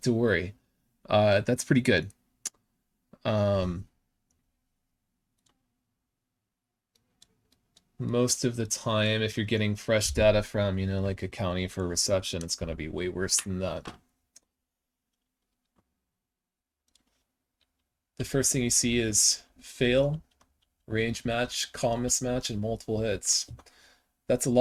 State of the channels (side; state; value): both; identical; correlation 1.00